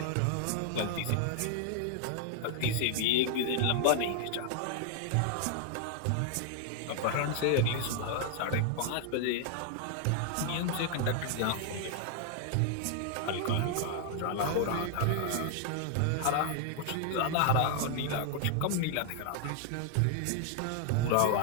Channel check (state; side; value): different; both; correlation 0.00